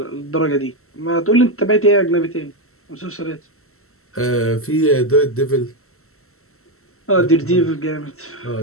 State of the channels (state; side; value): late; right; 0.63 ms